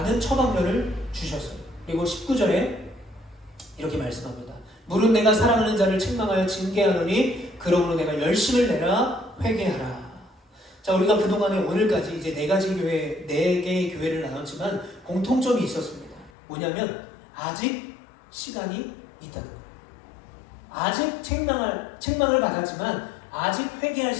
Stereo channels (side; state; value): right; drops out; at 16.3 s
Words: 처방전을 주셨어요. 그리고 19절에 이렇게 말씀합니다. 물은 내가 사랑하는 자를 책망하여 징계하노니 그러므로 내가 열심을 내라 회개하라. 자, 우리가 그동안에 오늘까지 이제 네 개의 교회를 나눴지만 공통점이 있었습니다. 뭐냐면 아직 시간이 있다는 거예요. 아직 책망을 받았지만 아직 회개할